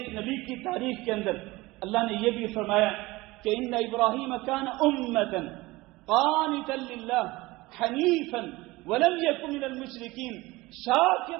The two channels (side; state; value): left; quieter; 20.7 dB